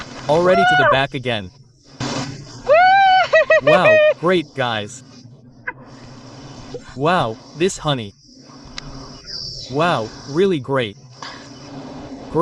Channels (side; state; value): both; identical; correlation 1.00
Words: Already to the back again. Wow, great guys. Wow, this honey. Wow, really great.